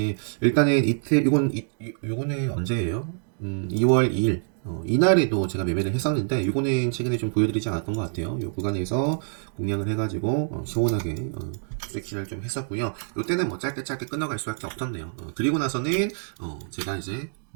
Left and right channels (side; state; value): left; silent; digital silence